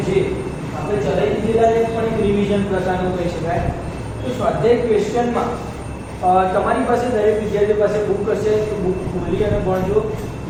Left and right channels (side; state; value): both; identical; correlation 1.00